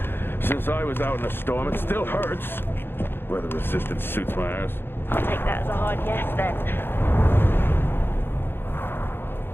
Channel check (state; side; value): late; right; 0.10 ms